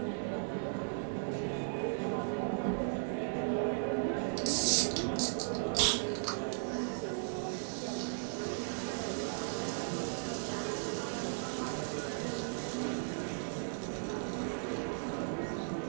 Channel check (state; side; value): silent; left; digital silence